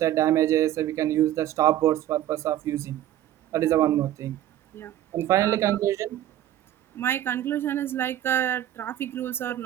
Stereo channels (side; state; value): left; quieter; 12.7 dB